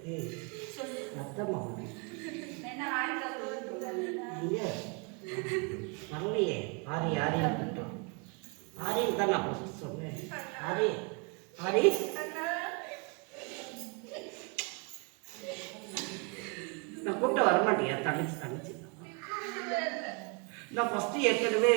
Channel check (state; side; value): quieter; left; 33.8 dB